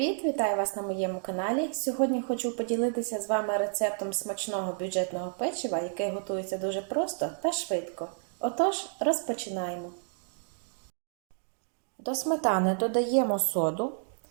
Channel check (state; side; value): silent; left; 58 dB below the other